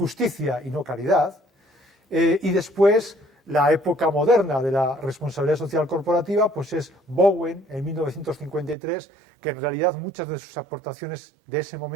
y no caridad, y después la época moderna de la responsabilidad social corporativa pues es Bowen en 1953, que en realidad muchas de sus aportaciones de ese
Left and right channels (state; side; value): drops out; left; at 8.8 s